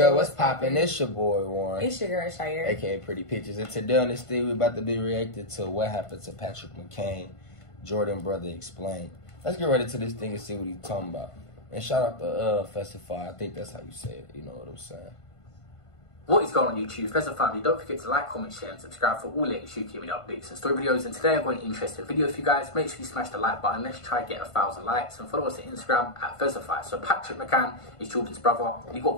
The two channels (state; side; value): late; right; 1.5 ms